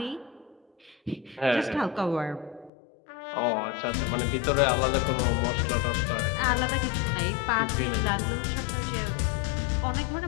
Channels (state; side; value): drops out; right; at 2.7 s